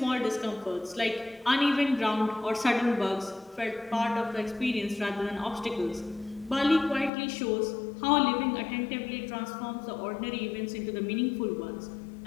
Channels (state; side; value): drops out; right; at 7.1 s